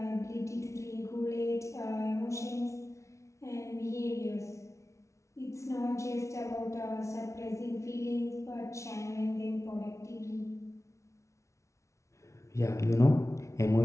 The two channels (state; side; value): late; right; 0.14 ms